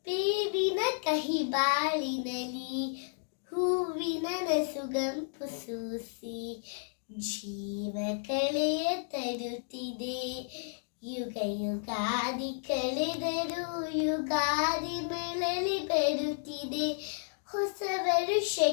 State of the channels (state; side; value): silent; right; digital silence